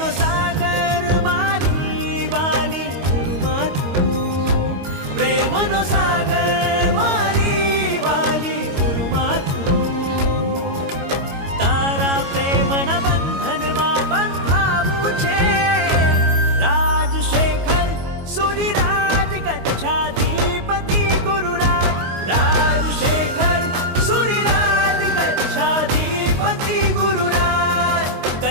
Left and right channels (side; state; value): left; late; 22 ms